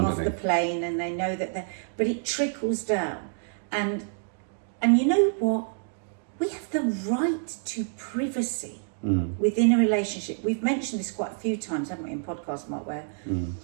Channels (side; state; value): left; silent; digital silence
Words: the plane and they know that they're... But it trickles down. And you know what? We have the right to privacy within a relationship. We've mentioned this quite a few times, haven't we, in podcasts, Mark, where